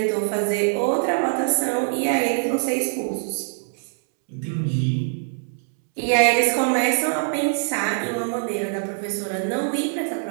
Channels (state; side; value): silent; left; 63 dB below the other